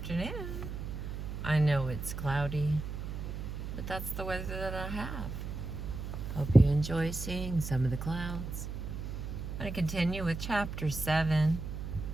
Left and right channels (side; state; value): right; noise; hum, 6 dB below the sound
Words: I know it's cloudy, but that's the weather that I have. Hope you enjoy seeing some of the clouds. I'm going to continue with chapter 7,